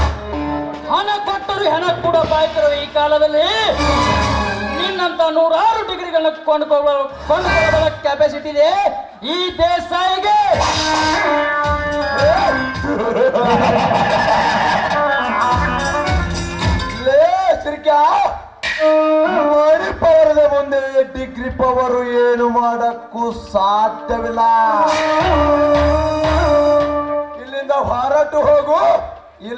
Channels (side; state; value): both; identical; correlation 1.00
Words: ಹಣ ಕೊಟ್ಟರು ಹೆಣ ಕೂಡ ಬಾಯ್ತಿರುವ ಈ ಕಾಲದಲ್ಲಿ ನಿನ್ನಂತ ನೂರಾರು ಡಿಗ್ರಿಗಳನ್ನ ಕೊಂಡುಕೊಳ್ಳಬಲ್ಲ ಕೆಪಾಸಿಟಿ ಇದೆ ಈ ದೇಸಾಯಿಗೆ. ಲೇ ಸಿರ್ಕ್ಯಾ, ಮಣಿ ಪವರದ ಮುಂದೆ ಡಿಗ್ರಿ ಪವರು ಏನು ಮಾಡಕ್ಕೂ ಸಾಧ್ಯವಿಲ್ಲ. ಇಲ್ಲಿಂದ ಹೊರಟು ಹೋಗು,